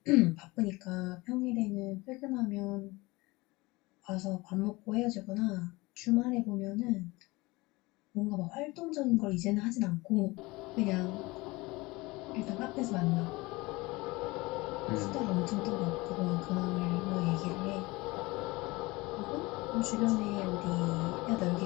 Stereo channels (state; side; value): quieter; right; 22.5 dB